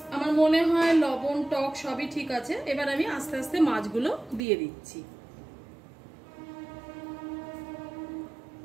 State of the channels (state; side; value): drops out; left; at 4.4 s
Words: আমার মনে হয় লবণ টক সবই ঠিক আছে। এবার আমি আস্তে আস্তে মাছগুলো দিয়ে দিচ্ছি।